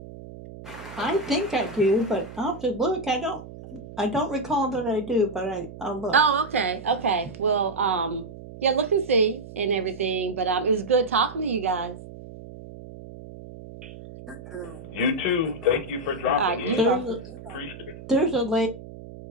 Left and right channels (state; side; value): noise; right; hum, 15 dB below the sound